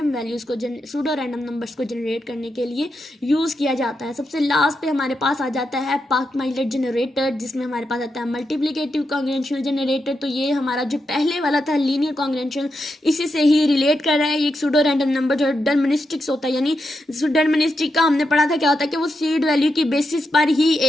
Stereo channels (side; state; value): both; normal; correlation 0.85